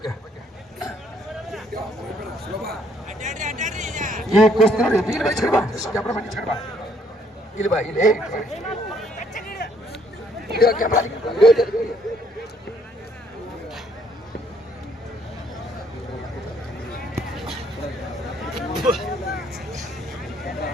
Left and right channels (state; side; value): normal; both; correlation 0.66